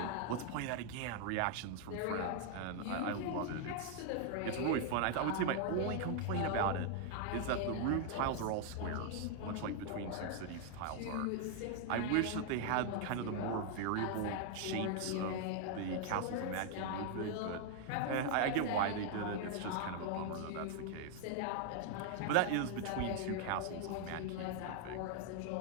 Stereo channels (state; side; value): different; both; correlation 0.00